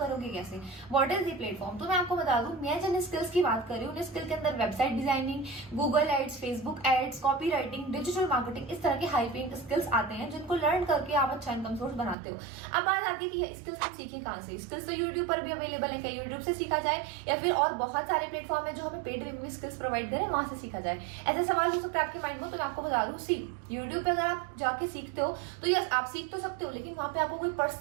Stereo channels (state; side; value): drops out; left; at 12.2 s